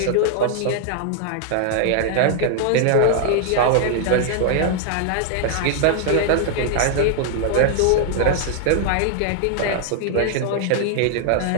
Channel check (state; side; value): different; both; correlation 0.00